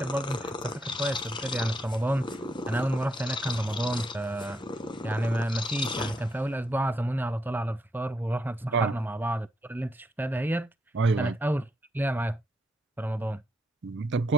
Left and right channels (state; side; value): normal; both; correlation 0.77